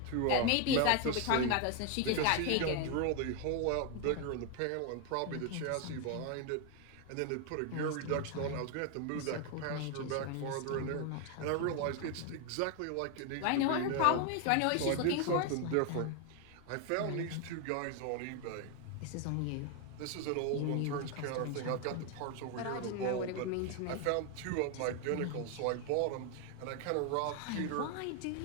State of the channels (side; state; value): both; different; correlation 0.01